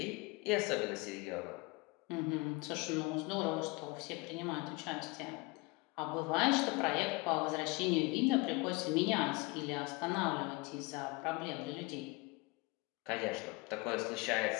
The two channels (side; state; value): right; quieter; 25.4 dB